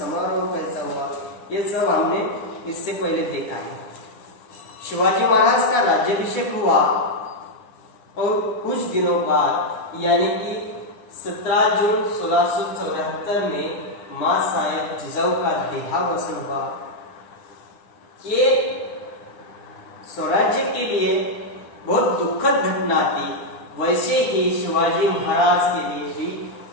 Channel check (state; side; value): late; right; 9.9 ms